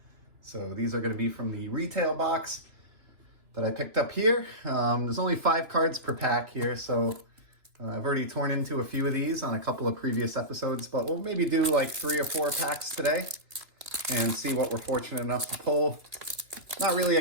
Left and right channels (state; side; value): late; left; 2.7 ms